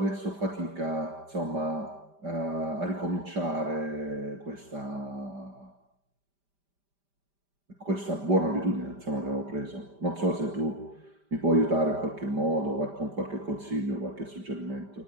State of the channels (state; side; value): late; left; 5.1 ms